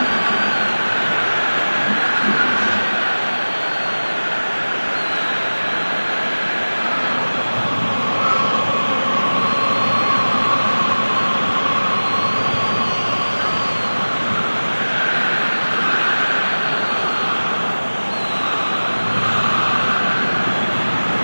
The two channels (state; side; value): inverted; both; correlation -1.00